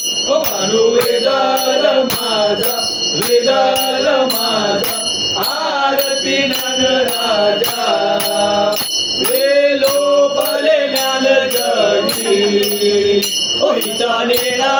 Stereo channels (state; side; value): identical; both; correlation 1.00